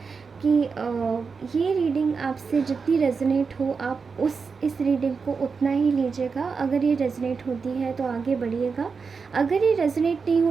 कि ये रीडिंग आपसे जितनी रेजोनेट हो आप इस रीडिंग को उतना ही लीजिएगा। अगर ये रेजोनेट होती है तो आगे बढ़िएगा, अगर ये रेजोनेट नहीं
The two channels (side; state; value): left; quieter; 5.2 dB